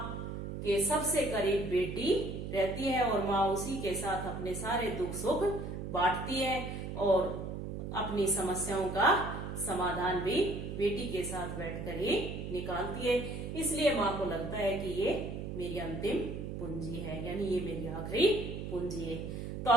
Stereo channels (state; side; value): noise; right; hum, 6 dB below the sound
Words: के सबसे करीब बेटी रहती है और माँ उसी के साथ अपने सारे दुख सुख बांटती है और अपनी समस्याओं का समाधान भी बेटी के साथ बैठकर ही निकालती है। इसलिए माँ को लगता है कि ये मेरी अंतिम पूंजी है, यानी ये मेरी आखिरी पूंजी है। तो